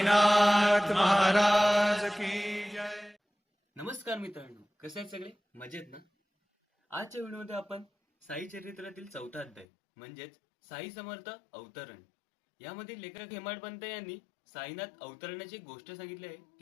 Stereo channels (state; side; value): drops out; right; at 9.7 s